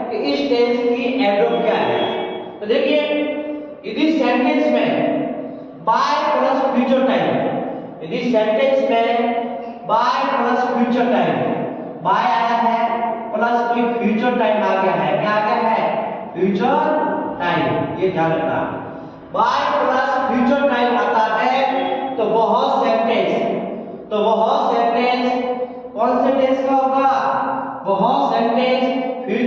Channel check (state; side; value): identical; both; correlation 1.00